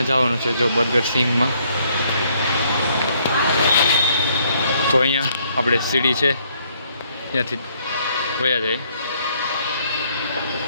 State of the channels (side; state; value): both; inverted; correlation -0.68